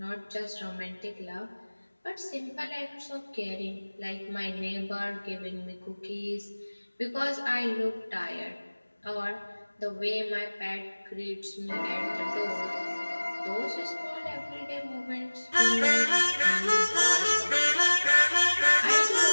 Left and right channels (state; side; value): inverted; both; correlation -1.00